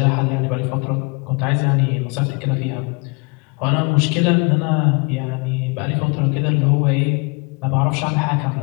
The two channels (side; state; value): right; quieter; 31.8 dB